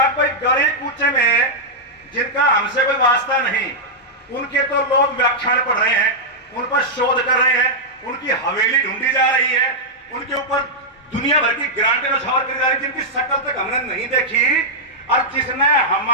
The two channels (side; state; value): both; normal; correlation -0.07